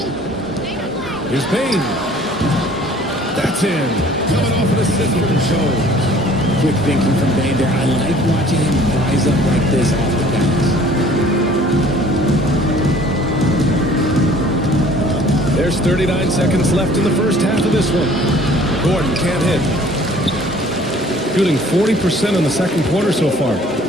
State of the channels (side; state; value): both; normal; correlation 0.53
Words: Here's Payne. That's in. Coming off of the assist from Jones. Quick thinking from Bane there. I like watching him rise up like this off the bounce. There's 39 seconds left in the first half of this one. Gordon can't hit. Shooting 40% in the second quarter so far.